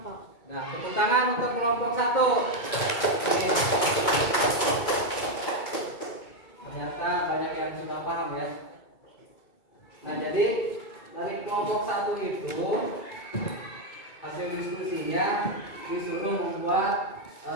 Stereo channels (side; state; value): right; late; 2.3 ms